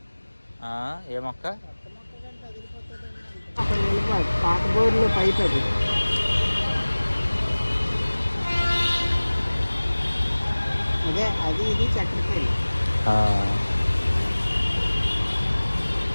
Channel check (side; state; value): both; inverted; correlation -1.00